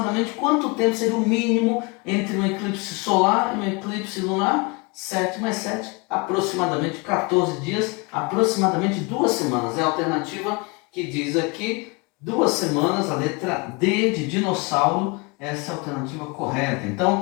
quanto tempo seria o mínimo entre um eclipse solar e um eclipse lunar? 7 mais 7, aproximadamente 14 dias, aproximadamente 2 semanas. É a alternativa que diz aqui 2 semanas, a letra D de dinossauro, essa é a alternativa correta.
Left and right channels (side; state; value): right; quieter; 28.4 dB